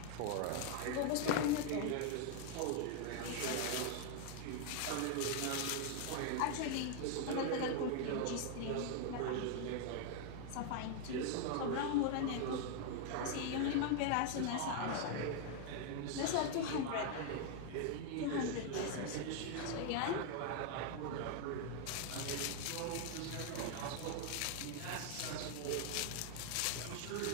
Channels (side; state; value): both; different; correlation 0.00